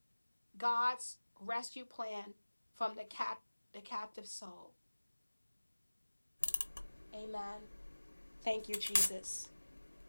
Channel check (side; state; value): both; inverted; correlation -1.00